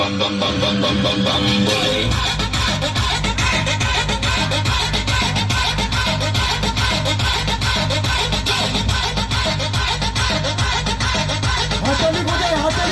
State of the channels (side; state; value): both; identical; correlation 1.00